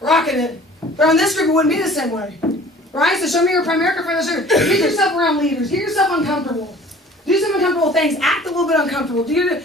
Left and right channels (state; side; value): normal; both; correlation 0.49